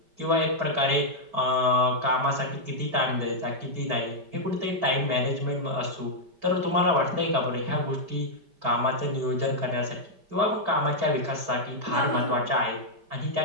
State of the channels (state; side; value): late; left; 5.1 ms